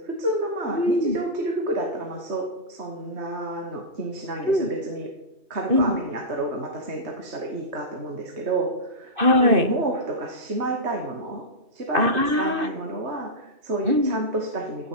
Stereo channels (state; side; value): late; left; 2.6 ms